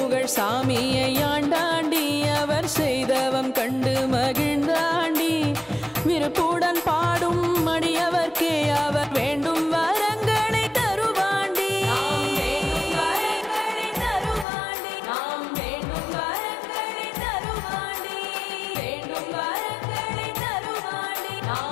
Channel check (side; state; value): right; drops out; at 14.5 s